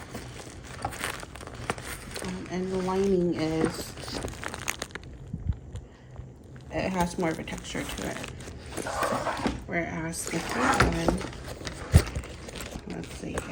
And the lining it has more of a texture to it. Whereas the fake one, let's see here,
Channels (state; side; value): identical; both; correlation 1.00